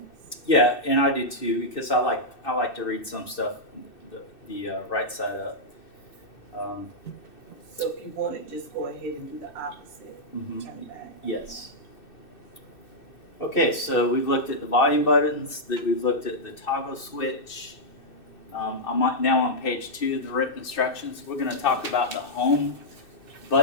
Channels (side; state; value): right; late; 2.6 ms